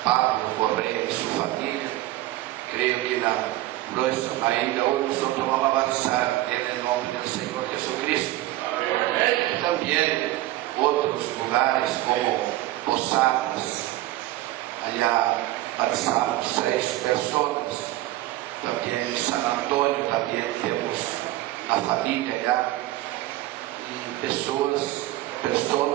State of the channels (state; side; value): quieter; left; 16.3 dB